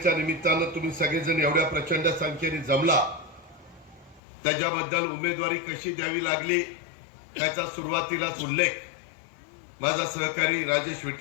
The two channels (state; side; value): drops out; right; at 4.2 s